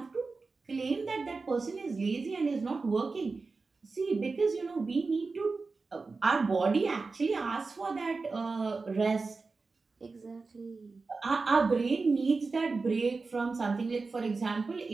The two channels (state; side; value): quieter; left; 4.1 dB